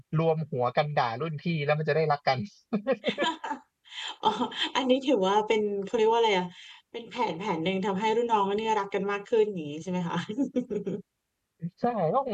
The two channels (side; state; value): both; identical; correlation 1.00